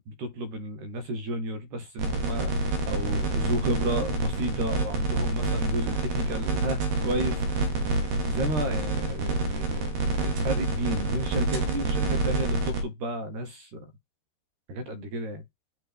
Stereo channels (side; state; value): left; late; 13 ms